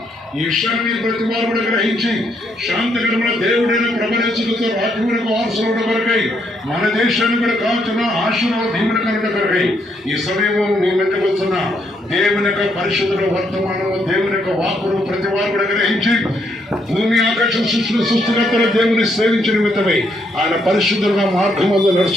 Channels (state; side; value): normal; both; correlation 0.74